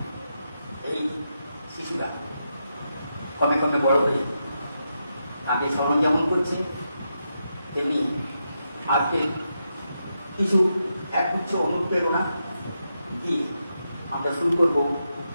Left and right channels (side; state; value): both; inverted; correlation -0.85